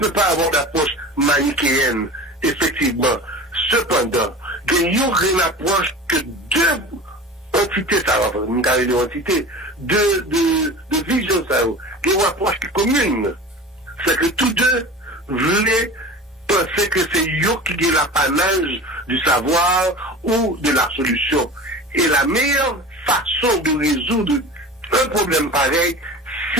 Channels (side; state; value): both; normal; correlation 0.35